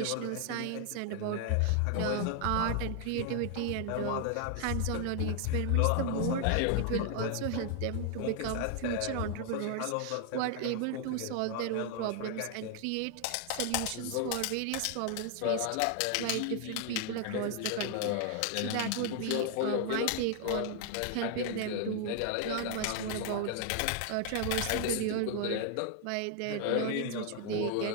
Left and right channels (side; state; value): both; different; correlation 0.00